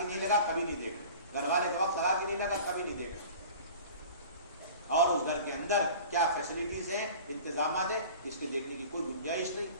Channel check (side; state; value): both; inverted; correlation -0.41